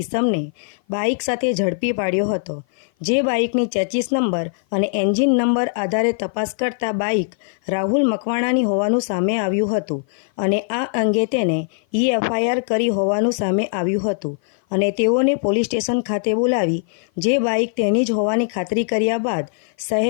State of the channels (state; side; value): silent; right; 55 dB below the other